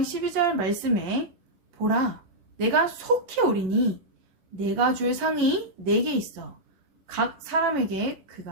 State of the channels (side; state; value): left; late; 11 ms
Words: 12절 말씀에 보라, 내가 속히 오리니 내가 줄 상이 내게 있어 각 사람에게